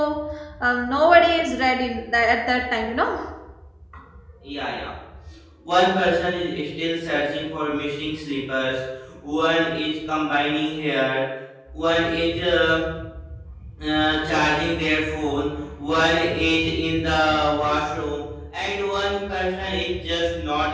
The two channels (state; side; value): identical; both; correlation 1.00